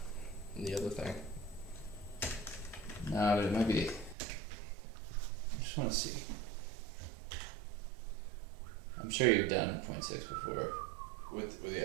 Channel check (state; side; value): drops out; left; at 4.2 s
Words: And the other thing. No, but it might be. I just want to see. I'm sure you've done 0.6 before. With